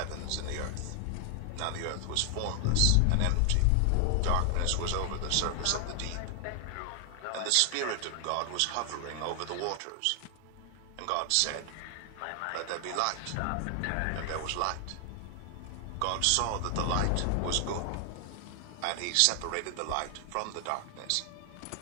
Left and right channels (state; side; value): different; both; correlation 0.00